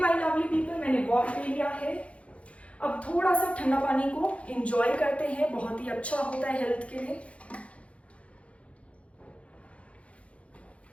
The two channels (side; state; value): right; late; 0.063 ms